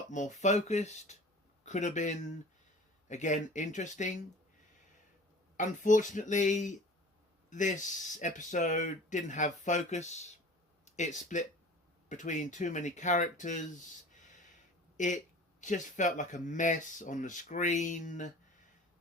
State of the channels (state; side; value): normal; both; correlation 0.43